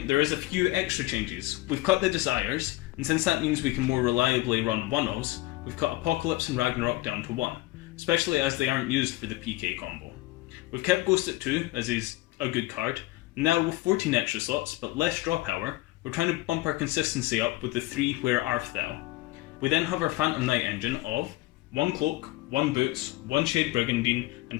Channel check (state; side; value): quieter; right; 19.1 dB